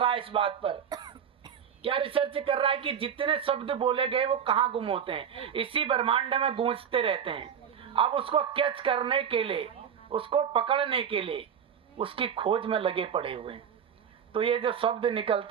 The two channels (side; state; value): left; quieter; 8.0 dB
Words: है इस बात पर। क्या रिसर्च कर रहा है कि जितने शब्द बोले गए वो कहाँ गुम होते हैं, इसी ब्रह्मांड में गूंजते रहते हैं। अब उसको कैच करने के लिए, उसको पकड़ने के लिए उसकी खोज में लगे पड़े हुए हैं। तो ये जो शब्द